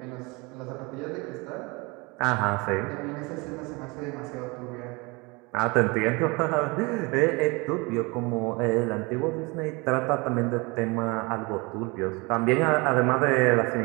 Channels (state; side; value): quieter; left; 26.8 dB